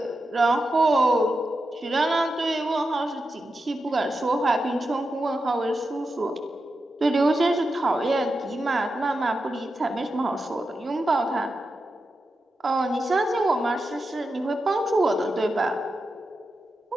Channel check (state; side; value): normal; both; correlation 0.89